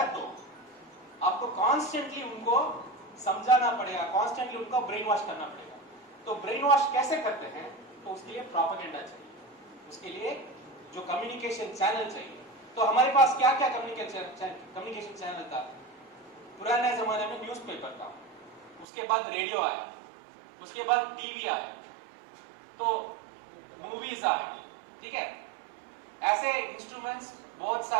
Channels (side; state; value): left; drops out; at 18.9 s